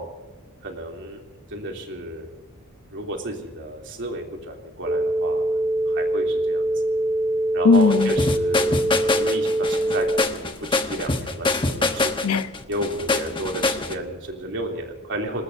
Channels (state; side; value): normal; both; correlation 0.57